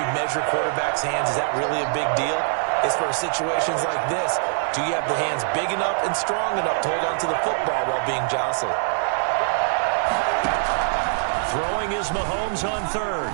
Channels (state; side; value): silent; left; digital silence